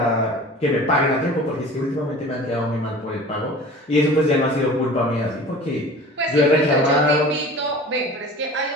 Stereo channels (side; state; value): both; normal; correlation 0.41